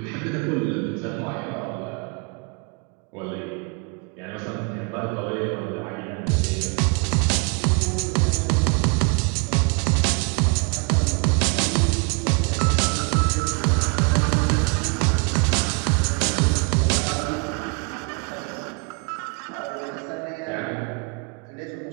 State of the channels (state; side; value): quieter; left; 32.4 dB